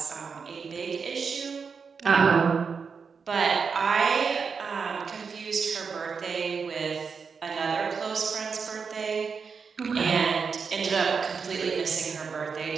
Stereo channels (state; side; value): quieter; left; 5.6 dB